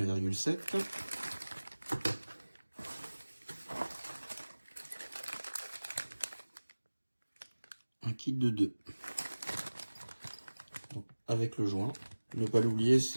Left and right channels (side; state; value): both; inverted; correlation -1.00